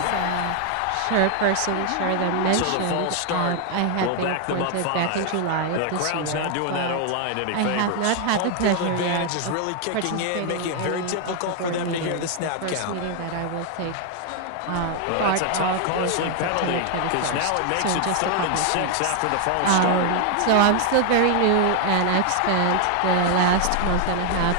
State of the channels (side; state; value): both; different; correlation 0.00